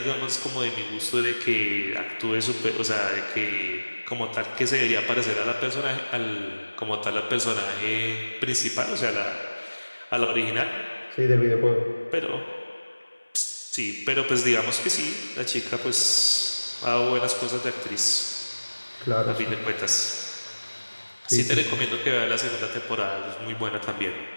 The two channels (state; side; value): inverted; both; correlation -1.00